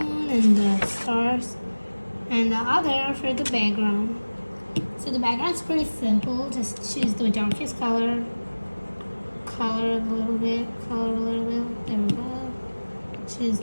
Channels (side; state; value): both; inverted; correlation -1.00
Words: and the stars and the other for the background. So the background's pretty simple. Just choose the darkest color, color a little bit, there we go. Choose